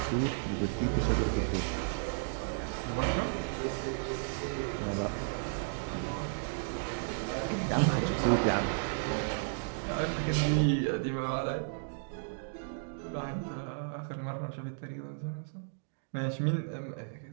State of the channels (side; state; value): left; silent; digital silence